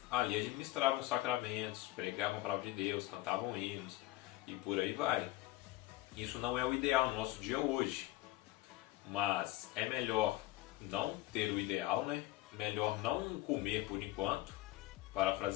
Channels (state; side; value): quieter; right; 17.8 dB